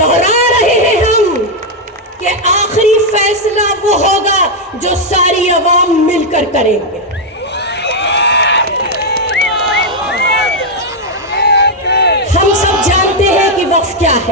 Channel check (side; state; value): both; normal; correlation 0.00